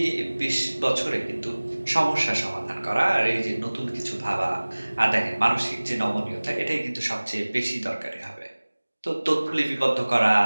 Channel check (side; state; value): both; inverted; correlation -1.00